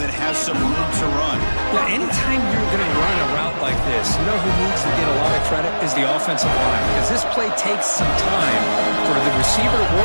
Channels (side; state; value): both; inverted; correlation -1.00